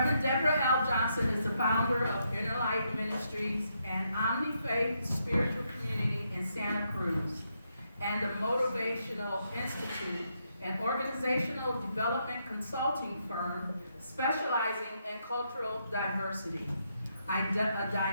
Deborah L. Johnson is the founder of Inner Life Ministries and Omni-Faith Spiritual Community in Santa Cruz, and the Motivational Institute, an organizational development consulting firm specializing in cultural diversity. A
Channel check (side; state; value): both; inverted; correlation -0.79